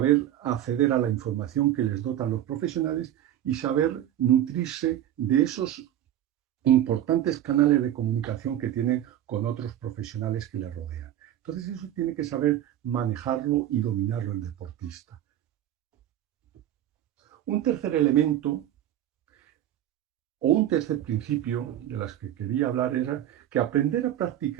acceder a la información que les dotan los profesionales y saber nutrirse de esos importantes canales de comunicación que tienen con otros profesionales que les rodean. Entonces eso tiene que saber manejarlo y dominarlo el deportista. Un tercer elemento o un tercer principio de las que quería hablar era que aprender a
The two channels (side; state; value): left; quieter; 11.9 dB